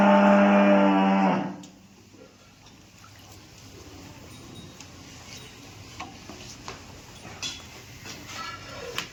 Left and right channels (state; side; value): identical; both; correlation 1.00